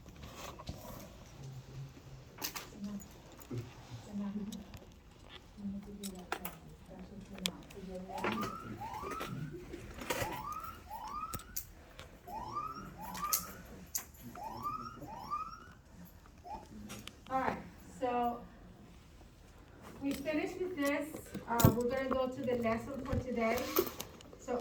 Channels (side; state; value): both; identical; correlation 1.00